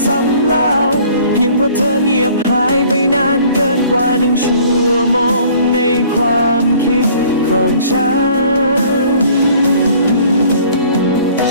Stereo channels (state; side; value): inverted; both; correlation -0.54